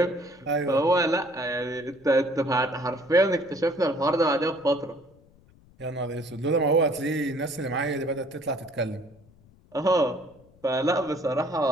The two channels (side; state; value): left; noise; rumble, 28 dB below the sound